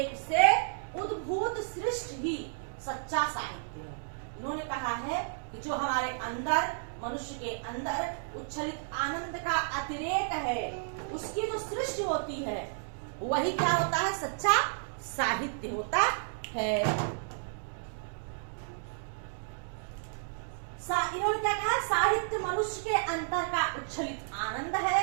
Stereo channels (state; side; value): silent; left; digital silence